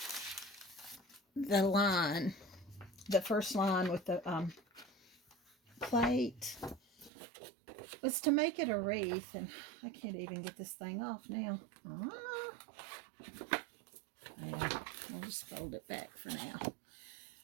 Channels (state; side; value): drops out; left; at 7.1 s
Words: the line, the first line with the plate, was to make it a wreath. And I can't even get this thing off now. Yeah, I'll just fold it back for now.